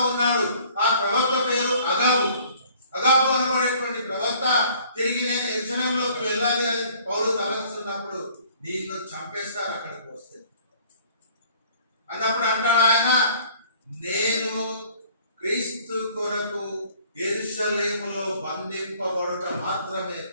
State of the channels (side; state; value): both; inverted; correlation -0.55